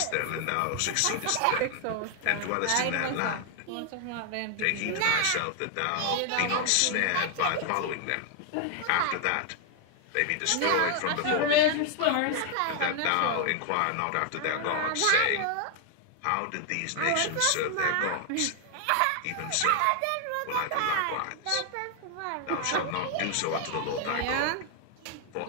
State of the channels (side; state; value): both; different; correlation 0.00